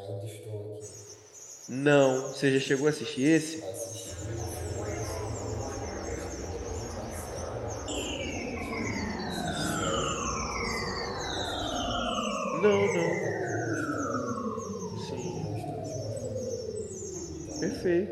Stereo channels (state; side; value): identical; both; correlation 1.00